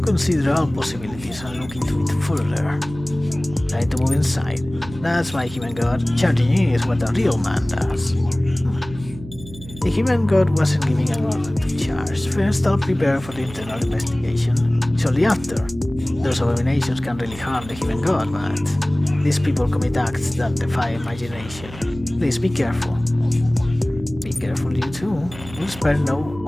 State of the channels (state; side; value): noise; right; hum, 15 dB below the sound